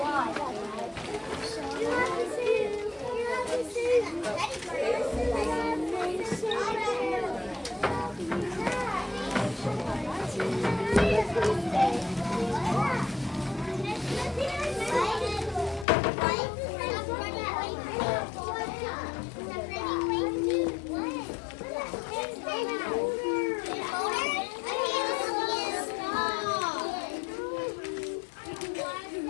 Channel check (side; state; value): right; drops out; at 15.9 s